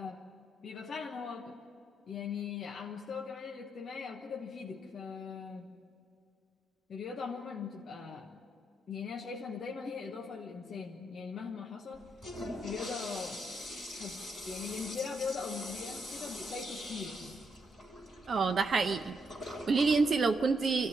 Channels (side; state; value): both; normal; correlation 0.79